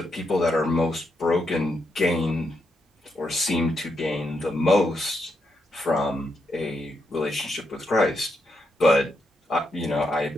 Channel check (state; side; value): normal; both; correlation 0.81